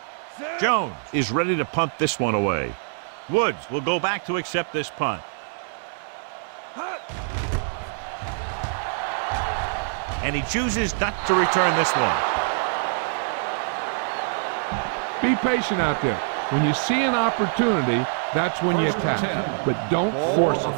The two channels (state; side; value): silent; left; digital silence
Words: Jones is ready to punt this one away. Woods will go back to accept this punt. And he chooses not to return this one. Be patient out there. When you see an opportunity, that's when you attack. But don't force it.